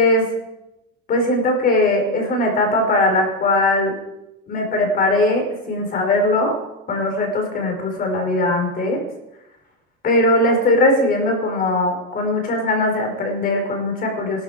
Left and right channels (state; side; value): normal; both; correlation 0.03